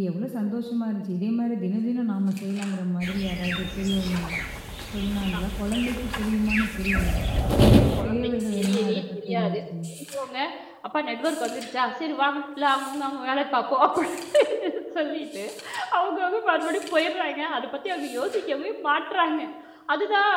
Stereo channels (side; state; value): both; identical; correlation 1.00